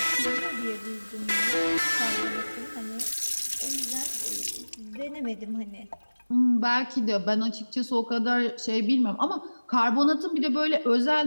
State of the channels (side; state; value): both; inverted; correlation -1.00